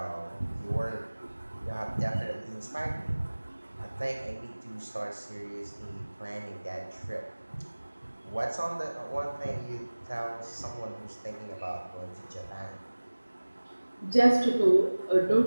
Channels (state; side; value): inverted; both; correlation -1.00